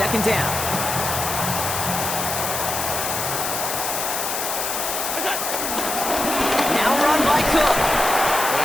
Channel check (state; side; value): noise; left; hiss, 2 dB below the sound